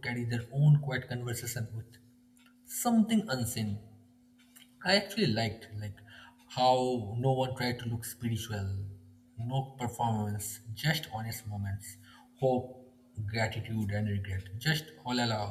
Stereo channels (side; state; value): both; identical; correlation 1.00